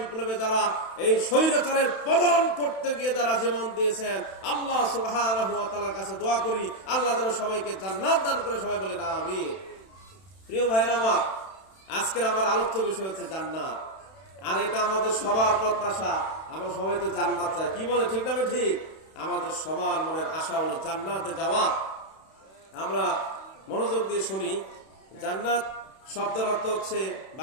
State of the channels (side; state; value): right; late; 31 ms